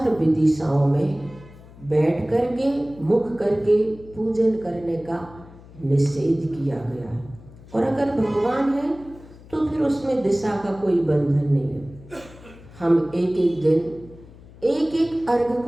दिशाओं में बैठ करके मुख करके पूजन करने का निषेध किया गया है। और अगर भगवान है तो फिर उसमें दिशा का कोई बंधन नहीं है। हम एक एक दिन एक एक अर्घ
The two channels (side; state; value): left; noise; hum, 21 dB below the sound